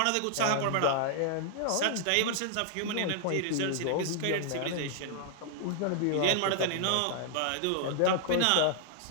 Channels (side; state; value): both; different; correlation -0.01